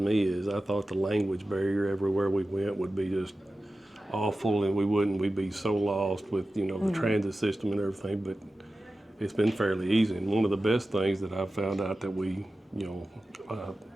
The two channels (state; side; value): normal; both; correlation 0.94